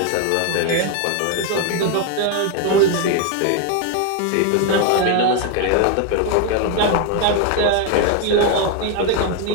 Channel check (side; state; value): both; different; correlation 0.01